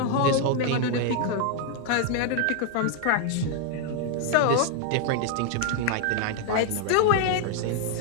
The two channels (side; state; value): both; different; correlation 0.00